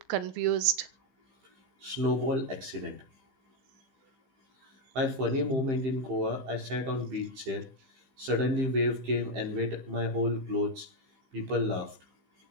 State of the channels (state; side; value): late; left; 15 ms